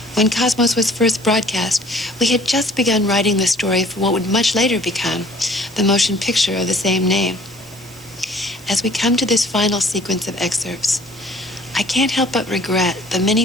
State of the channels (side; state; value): right; noise; hiss, 22 dB below the sound